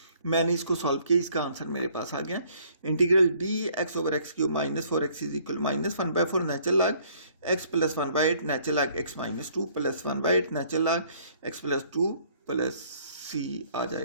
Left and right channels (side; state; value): both; inverted; correlation -0.61